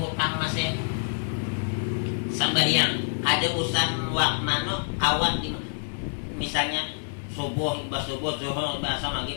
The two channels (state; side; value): silent; right; digital silence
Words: masih sembahyang, ada usaha wak mano kawan di misalnya subuh imbas subuh zuhur imbas asar